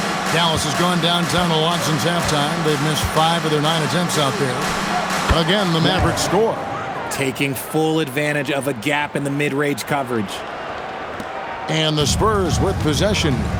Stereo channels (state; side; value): identical; both; correlation 1.00